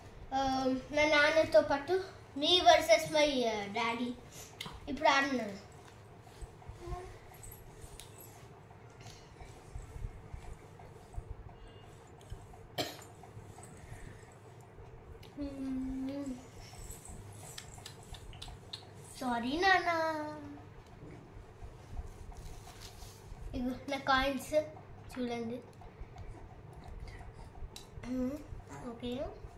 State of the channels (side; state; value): both; identical; correlation 1.00